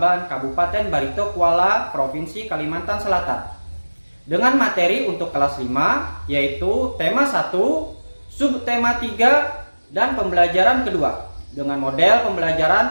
Kabupaten Barito Kuala, Provinsi Kalimantan Selatan. Dengan materi untuk kelas 5 yaitu tema 1, subtema 3, dan pembelajaran kedua dengan model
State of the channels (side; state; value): both; inverted; correlation -1.00